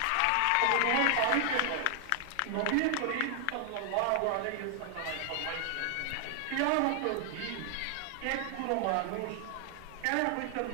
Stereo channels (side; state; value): both; different; correlation 0.00